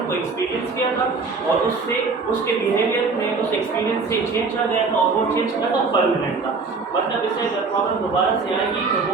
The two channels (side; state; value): left; quieter; 4.4 dB